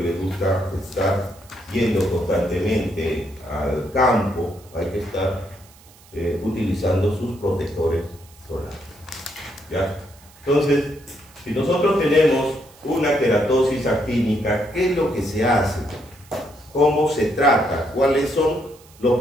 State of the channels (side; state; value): right; noise; hiss, 26 dB below the sound